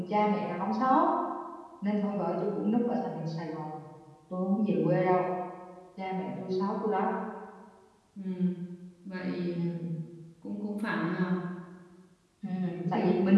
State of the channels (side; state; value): both; identical; correlation 1.00